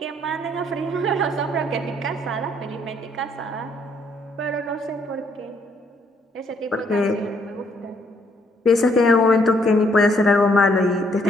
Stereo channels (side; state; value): both; normal; correlation 0.69